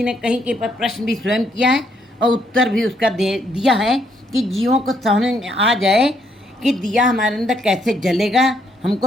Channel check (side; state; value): both; normal; correlation 0.72